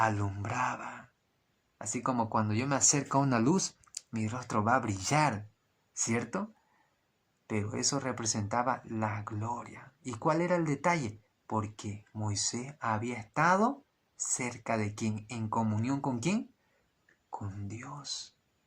Así como cuando yo me acerco a una luz, mi rostro va a brillar, ¿cierto? Pero eso representaba la gloria. ¿Y cuál era el detalle? Porque Moisés había estado cerca de ¿quién? ¿En comunión con quién? Con Dios.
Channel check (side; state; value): both; identical; correlation 1.00